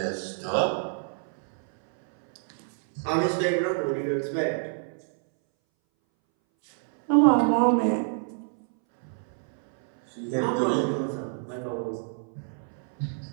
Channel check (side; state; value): left; silent; 60 dB below the other